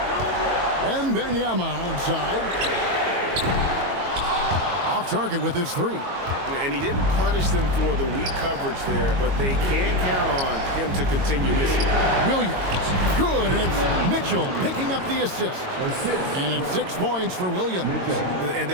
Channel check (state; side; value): late; left; 22 ms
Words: Wembanyama outside. Off target with his 3. And he didn't punish them for the weak coverage there, but they can't count on him to continue missing. Williams. Good, and it's Mitchell picking up the assist. And it's 6 points for Williams. And